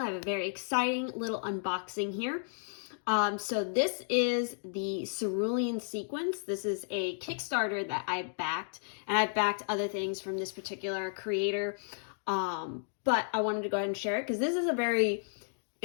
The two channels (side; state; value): right; silent; digital silence